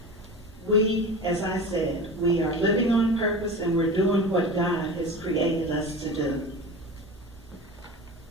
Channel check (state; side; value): normal; both; correlation 0.31